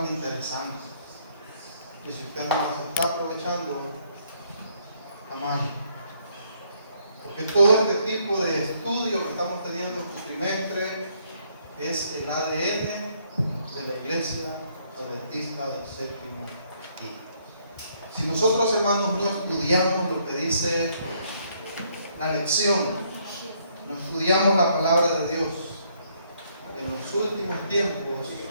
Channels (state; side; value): inverted; both; correlation -0.69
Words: interesantes. Y si usted no las está aprovechando, está mal. Porque todo este tipo de estudio que estamos teniendo este trimestre es el ADN de la Iglesia Adventista del Séptimo Día. Si nosotros, hermanos, no estudiamos lo que dice la lección, no estudiamos la palabra de Dios, en los últimos tiempos,